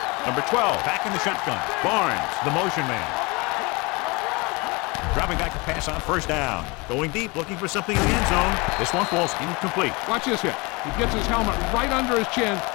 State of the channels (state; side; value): quieter; right; 26.6 dB